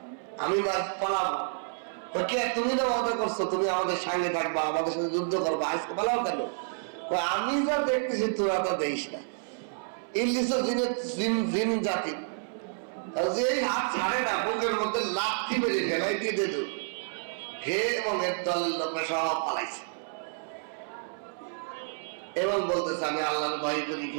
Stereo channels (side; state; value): left; silent; 58 dB below the other